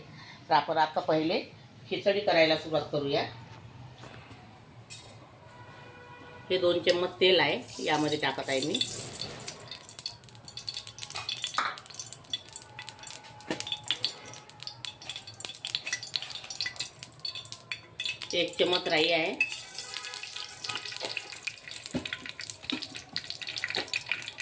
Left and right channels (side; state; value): both; identical; correlation 1.00